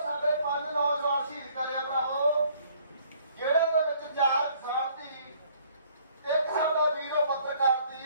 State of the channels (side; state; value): both; inverted; correlation -0.61